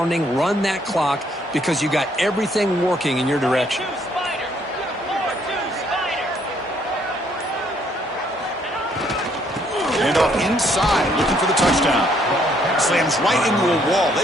Run that clock because you got everything working in your direction. And off inside, looking for the touchdown. Slams right into a wall.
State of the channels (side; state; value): both; normal; correlation 0.68